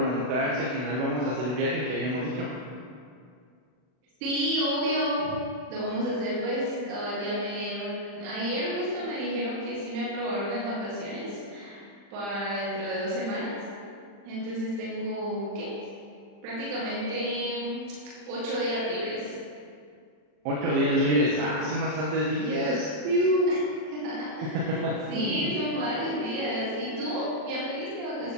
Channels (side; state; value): left; late; 40 ms